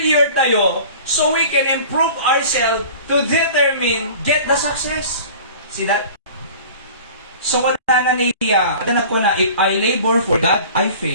tayo, so we can improve ourselves to determine, get the success. See that? So, wala na niya. Atanap ko na, if I labor for God, I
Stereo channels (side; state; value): both; inverted; correlation -0.42